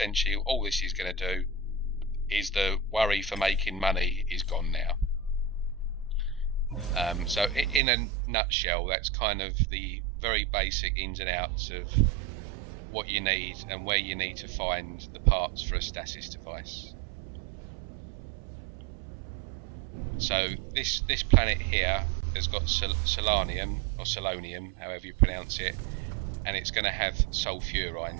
all this is going to do is the worry for making money is gone now. So in a nutshell, that's kind of the very basic ins and outs of what you need and where you need to find the parts for a stasis device. So this planet here has got selenium, or selonium, however you pronounce it, and it's going to have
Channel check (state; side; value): drops out; left; at 7.8 s